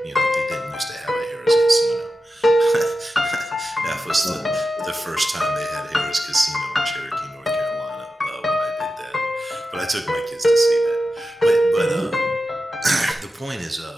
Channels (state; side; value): normal; both; correlation 0.91